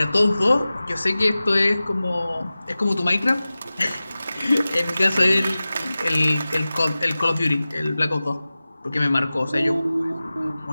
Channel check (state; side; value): inverted; both; correlation -0.96